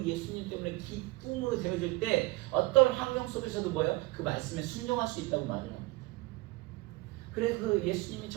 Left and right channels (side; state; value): left; quieter; 21.9 dB